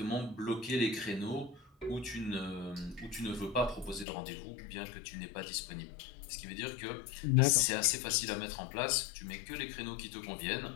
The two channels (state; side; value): drops out; right; at 4.0 s